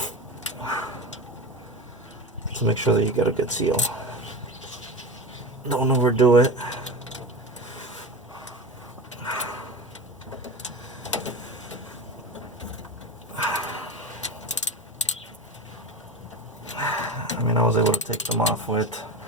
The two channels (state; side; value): normal; both; correlation 0.26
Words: to make sure that you get a good seal. Don't overdo it. I mean, I was able to take them off with